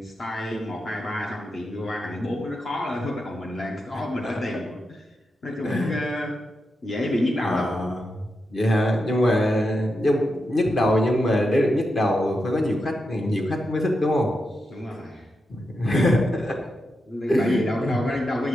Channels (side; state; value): both; normal; correlation 0.87